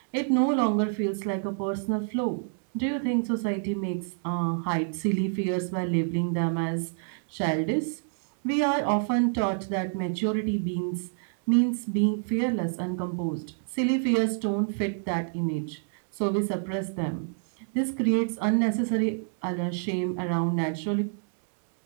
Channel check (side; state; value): left; silent; digital silence